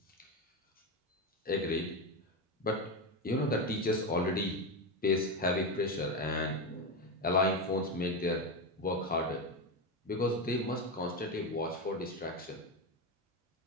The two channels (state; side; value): normal; both; correlation 0.14